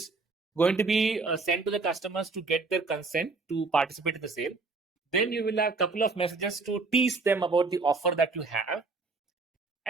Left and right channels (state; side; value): quieter; left; 3.9 dB